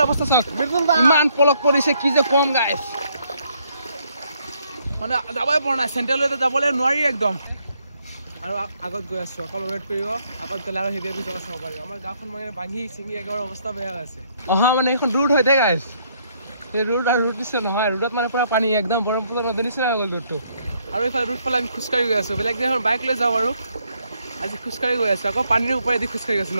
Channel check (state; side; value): inverted; both; correlation -0.70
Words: অৱস্থা চাওক মিদুল দা ইমান পলক পৰিছে কি যে কম গাইস মানে যাবই পৰা নাই সেন্ট্ৰালতে যাবলৈ নোৱাৰি একদম আৰু আগত গৈ আছো অকল ৱেট কৰিব আগত গলে আৰু হেভি জগা চাব পাৰিব আমাৰ গাঁওখন মানে ভাঙি চিঙি একেবাৰে অৱস্থা বেয়া হৈছে অহা মানে এখন ৰুট হৈ থাকে গাইস এই ৰুট আৰু ৰুট দিছে নহয় ৰুটত মানে পুৰা পানী একদম ব্ৰহ্মপুত্ৰ নদীৰ নিচিনা হৈ গ'ল ৰুটটো আৰু এইফালে ৰুট ফালে আমি খোজকাঢ়ি গৈ আছো বেলেগ দিনাখন বাইক লৈ যাওঁ আৰু আজি খোজকাঢ়ি গৈ আছো আকৌ পানীৰ ওপৰেদি খোজকাঢ়ি আছো